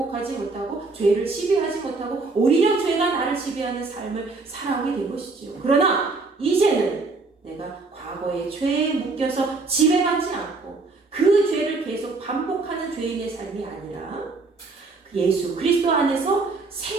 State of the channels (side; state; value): left; quieter; 3.8 dB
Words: 못하고 죄를 지배하지 못하고 오히려 죄가 나를 지배하는 삶을 살아가게 된 것이죠. 그러나 이제는 내가 과거의 죄에 묶여서 지배받지 않고 그 죄를 계속 반복하는 죄인의 삶이 아니라 예수 그리스도 안에서